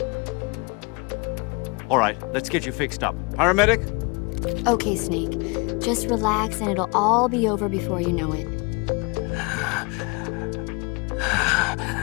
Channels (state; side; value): quieter; right; 29.4 dB